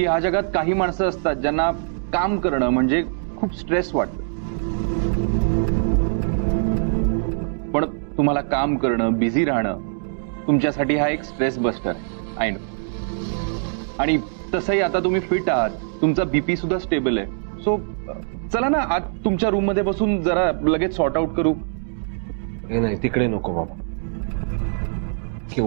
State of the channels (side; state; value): left; silent; digital silence